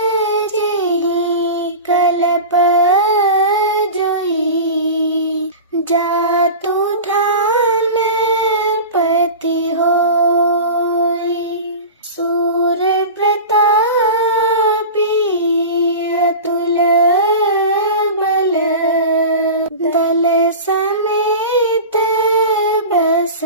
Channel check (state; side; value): inverted; both; correlation -0.31